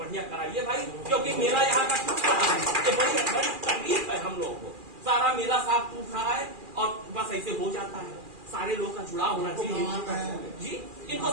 कराइए भाई, क्योंकि मेला यहाँ का टूट रहा है, ये बड़ी तकलीफ है हम लोगों को। सारा मेला साफ टूट रहा है और बस ऐसे हो जाता है। सारे लोगों का जुड़ाव होना चाहिए जी। इनको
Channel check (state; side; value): late; left; 2.4 ms